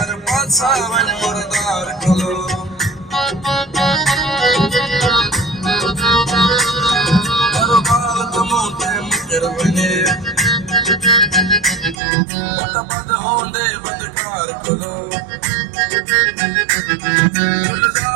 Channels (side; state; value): left; drops out; at 12.0 s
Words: पासा वन मुर्दार कलो। करो बाल तमोते मुकर बने, पता बद होंदे बदकार कलो।